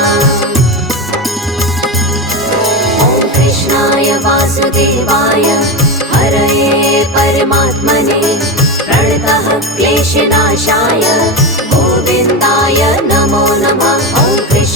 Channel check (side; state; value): both; normal; correlation 0.18